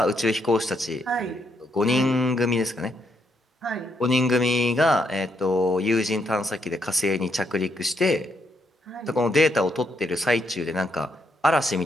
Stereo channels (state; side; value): normal; both; correlation 0.76